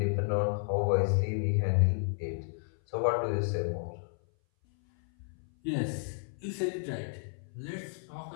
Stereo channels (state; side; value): silent; right; 56 dB below the other